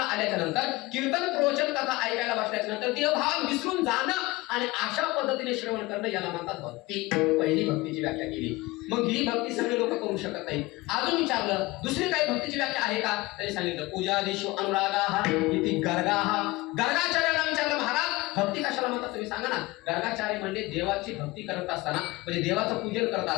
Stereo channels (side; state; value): right; quieter; 21.1 dB